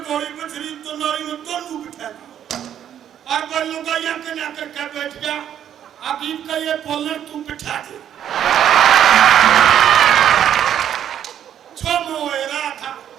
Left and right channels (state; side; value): quieter; left; 10.0 dB